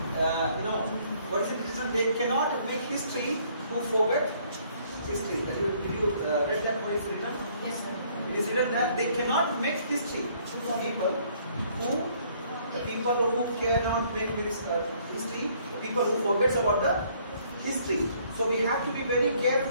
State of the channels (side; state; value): both; inverted; correlation -0.63